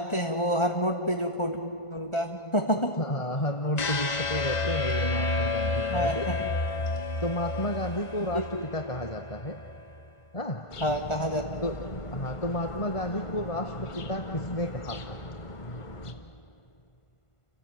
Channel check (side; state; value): right; late; 1.5 ms